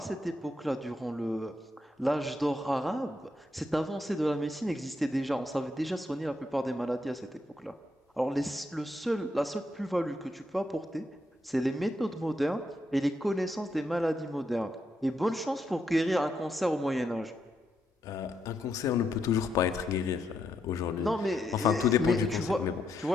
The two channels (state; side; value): normal; both; correlation 0.80